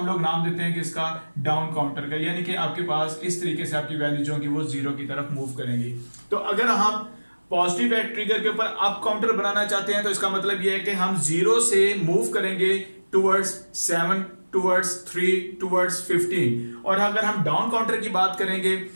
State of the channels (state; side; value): inverted; both; correlation -1.00